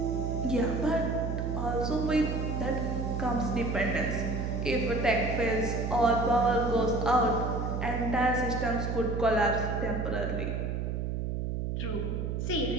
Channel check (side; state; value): right; noise; hum, 1 dB below the sound